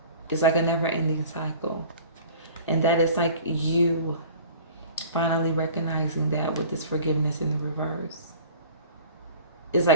It's like a never-ending cycle. And that is like you finally recognizing that with this forgiveness in the reverse. It's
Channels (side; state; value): both; inverted; correlation -0.44